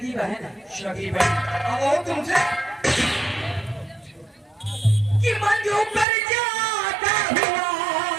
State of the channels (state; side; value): drops out; left; at 6.1 s